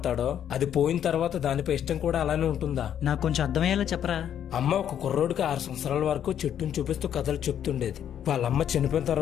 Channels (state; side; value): quieter; right; 9.7 dB